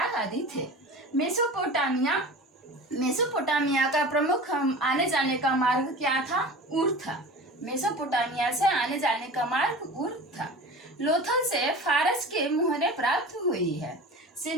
आदि थे। मेसोपोटामिया का प्रमुख आने जाने का मार्ग क्या था? ऊर था। मेसोपोटामिया से आने जाने का मार्ग ऊर था। लोथल से फारस के मुहरे प्राप्त हुई है।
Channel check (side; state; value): both; normal; correlation 0.36